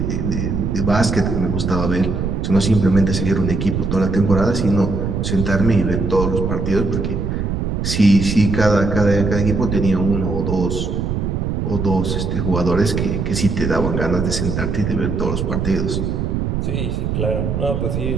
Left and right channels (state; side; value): noise; right; rumble, 1 dB below the sound